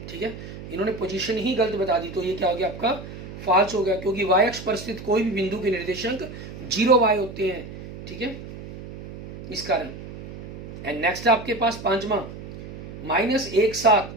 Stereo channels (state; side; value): noise; right; hum, 12 dB below the sound